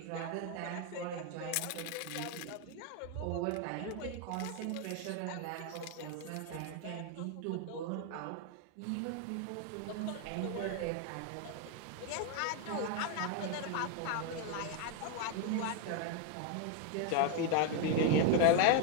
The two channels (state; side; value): different; both; correlation 0.01